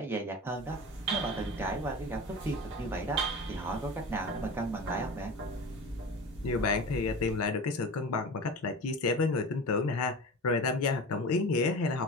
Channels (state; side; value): normal; both; correlation 0.32